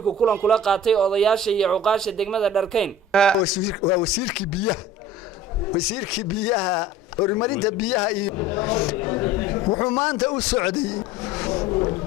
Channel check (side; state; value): both; normal; correlation 0.42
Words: kulan kula qaatay odayaasha iyo cuqaasha degmada Dharkayn wasiirkii biyaha horumarinta biyaha iyo wuxuu maanta u